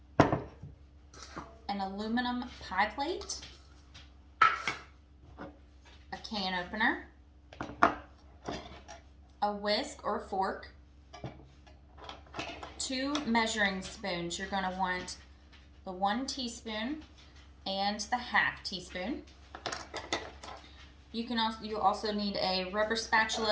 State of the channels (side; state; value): both; identical; correlation 1.00